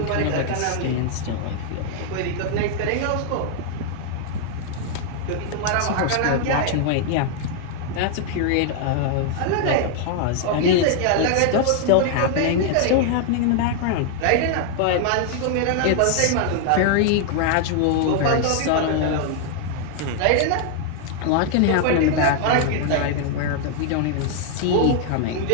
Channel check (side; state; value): both; different; correlation 0.00